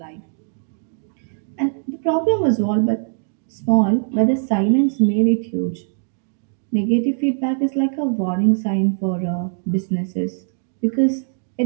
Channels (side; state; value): left; silent; digital silence